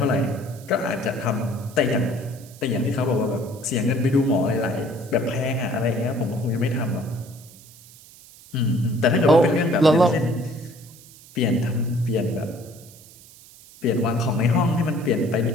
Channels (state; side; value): noise; right; hiss, 22 dB below the sound